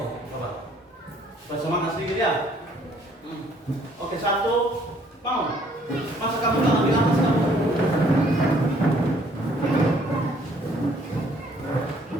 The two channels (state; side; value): normal; both; correlation 0.62